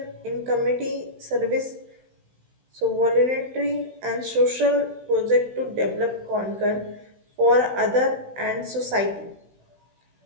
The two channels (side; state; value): left; late; 16 ms